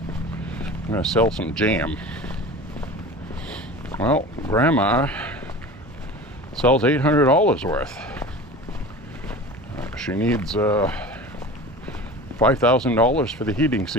I'm going to sell some jam. Well, Grandma sells $800 worth. She needs $5,000 for the heating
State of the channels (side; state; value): both; normal; correlation 0.36